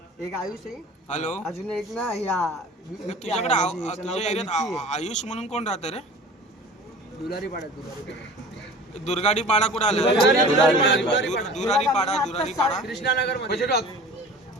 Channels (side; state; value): both; normal; correlation 0.41